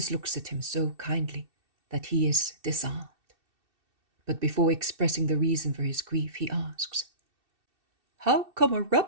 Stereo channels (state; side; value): late; left; 2.7 ms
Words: looks at him so kindly that he is disarmed. But before expressing the reason for his grief, he asks, "How come a